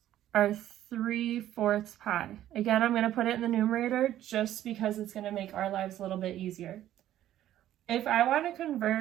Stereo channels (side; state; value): left; quieter; 12.6 dB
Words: our 3/4 pi. Again, I'm going to put it in the numerator just because it's going to make our lives a little bit easier. If I want to